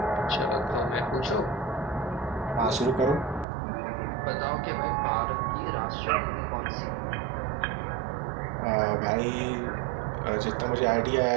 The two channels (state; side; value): drops out; left; at 3.5 s